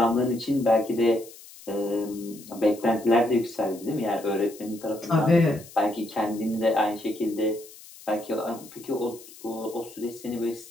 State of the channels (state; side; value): noise; left; hiss, 19 dB below the sound